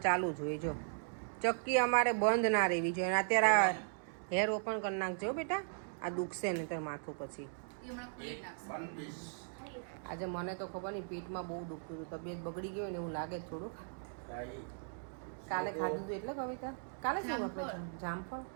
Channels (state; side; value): silent; left; digital silence